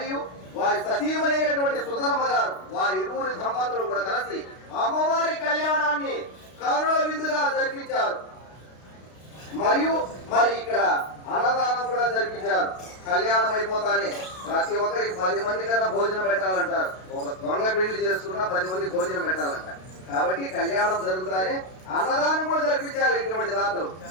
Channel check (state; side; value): late; right; 32 ms